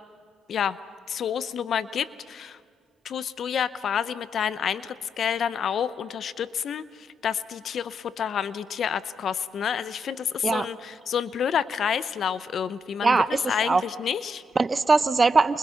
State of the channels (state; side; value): normal; both; correlation 0.79